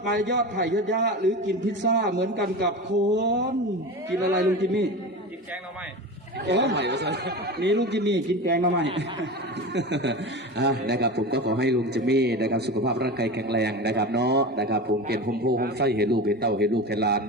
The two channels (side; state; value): both; normal; correlation 0.27